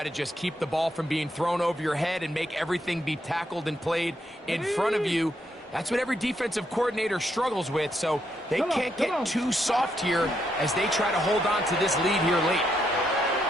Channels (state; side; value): normal; both; correlation 0.78